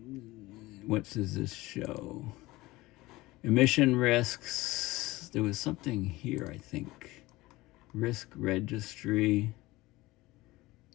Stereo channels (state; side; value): quieter; right; 19.7 dB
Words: what does this show? Emission risks. There was something here, I think. Risk registry,